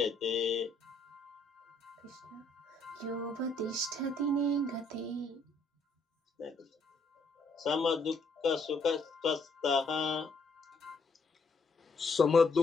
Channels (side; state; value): right; quieter; 3.1 dB